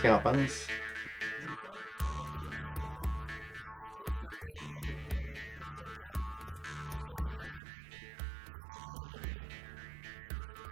qu'il en pense. Les frères Bertium, c'est sûr que je trouve que le folklore aujourd'hui, il faut que ça évolue un peu. Les autres, ils l'ont évolué.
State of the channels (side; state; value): left; drops out; at 7.6 s